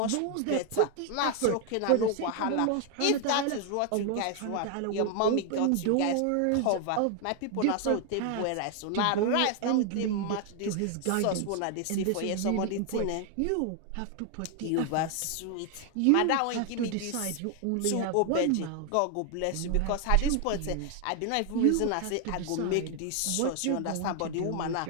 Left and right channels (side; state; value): both; different; correlation 0.00